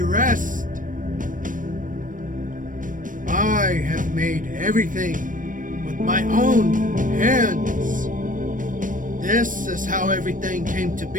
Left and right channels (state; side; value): late; left; 0.38 ms